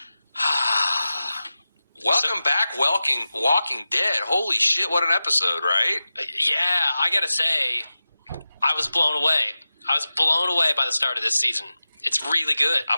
Welcome back, Walking Dead. Holy shit, what an episode, right? Yeah, I gotta say, I was blown away. I was blown away by the start of this season. It's really good.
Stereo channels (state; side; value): inverted; both; correlation -0.94